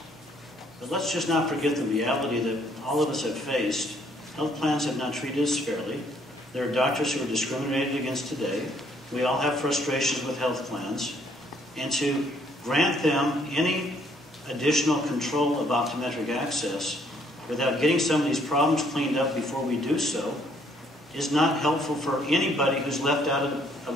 But let's just not forget the reality that all of us have faced. Health plans have not treated us fairly. There are doctors who are discriminated against today. We all have frustrations with health plans. And to grant them any additional control of optometric access without getting some of these problems cleaned up before we do so is not helpful for anybody who's left out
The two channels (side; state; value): both; normal; correlation 0.66